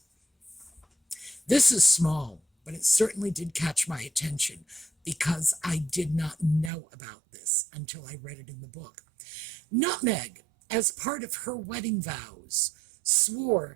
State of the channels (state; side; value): drops out; left; at 6.7 s